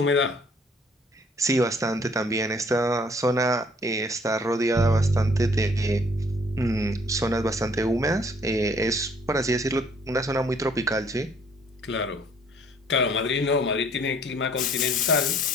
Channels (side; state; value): both; normal; correlation 0.60